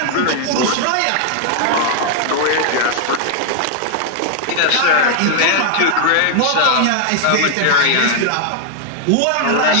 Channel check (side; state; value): both; different; correlation 0.00